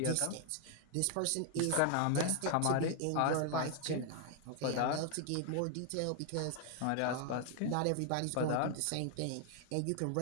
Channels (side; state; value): both; different; correlation 0.00